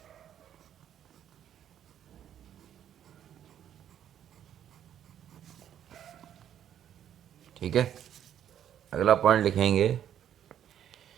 ठीक है, अगला पॉइंट लिखेंगे।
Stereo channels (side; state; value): left; quieter; 10.1 dB